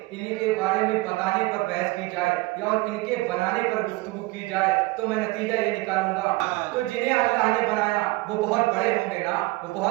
بتانے پر بحث کی جائے یا اور ان کے بنانے پر گفتگو کی جائے تو میں نتیجہ یہ نکالوں گا، تو جنہیں اللہ نے بنایا وہ بہت بڑے ہوں گے نا، وہ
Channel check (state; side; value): quieter; left; 21.6 dB